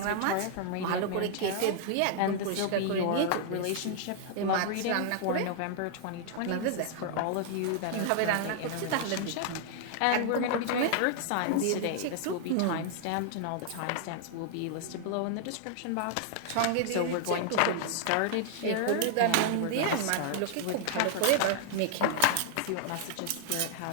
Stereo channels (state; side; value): different; both; correlation 0.00